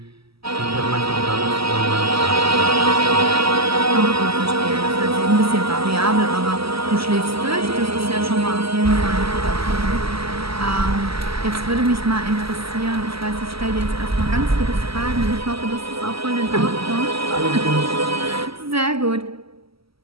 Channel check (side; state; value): left; late; 0.76 ms